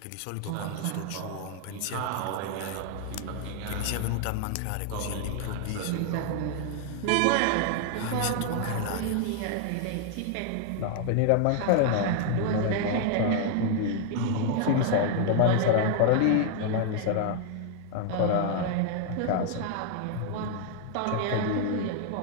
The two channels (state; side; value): different; both; correlation 0.00